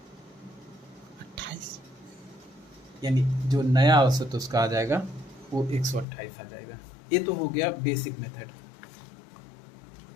यानी जो नया औसत उसका आ जाएगा वो 128 आ जाएगा। ये तो हो गया बेसिक मेथड।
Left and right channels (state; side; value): drops out; right; at 6.1 s